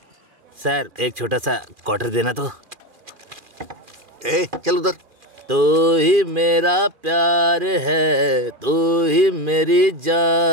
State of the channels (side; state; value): left; late; 2.4 ms